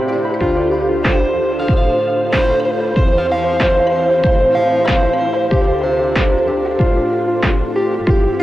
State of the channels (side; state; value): both; normal; correlation 0.93